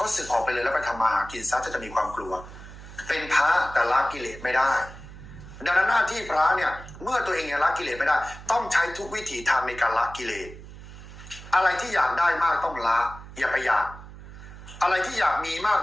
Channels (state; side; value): noise; right; hum, 15 dB below the sound